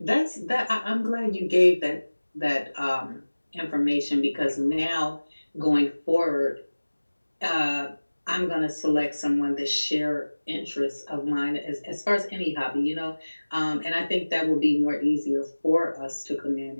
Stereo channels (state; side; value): inverted; both; correlation -1.00